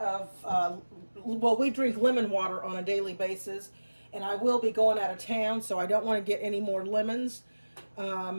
of, we drink lemon water on a daily basis, and I will be going out of town, so I don't want to get any more lemons.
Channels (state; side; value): inverted; both; correlation -1.00